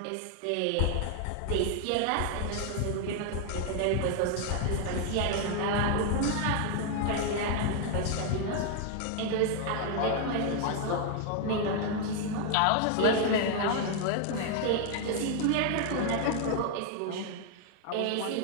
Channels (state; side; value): different; both; correlation 0.00